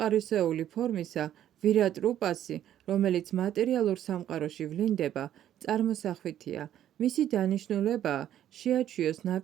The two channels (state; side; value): quieter; left; 11.3 dB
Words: ფორმისა, ვირატ რუპასი, რომელიც მატერიალურ სამყაროში ვლინდება, წარმოსახვითია. მისი დანიშნულებაა შეაჩვიოს